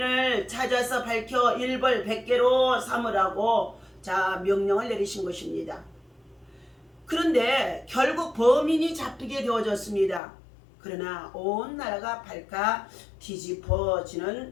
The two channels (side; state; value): right; drops out; at 10.2 s